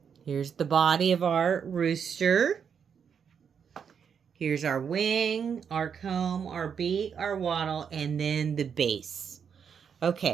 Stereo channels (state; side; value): quieter; left; 7.1 dB